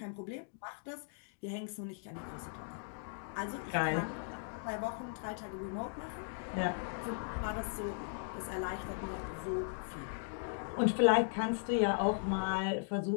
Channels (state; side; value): silent; right; digital silence